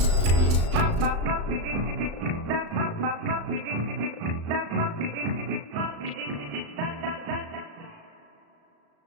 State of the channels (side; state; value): left; late; 35 ms